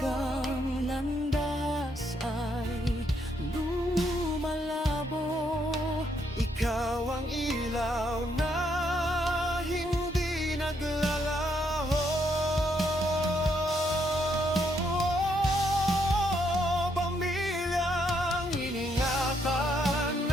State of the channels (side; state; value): both; normal; correlation 0.74